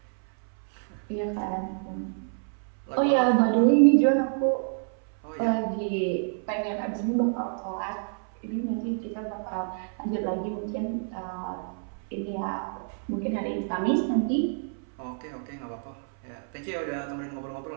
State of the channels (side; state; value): left; silent; 59 dB below the other